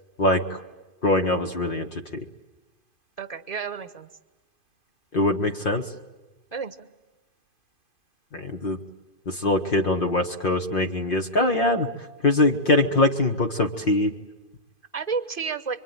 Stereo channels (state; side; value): late; right; 2.5 ms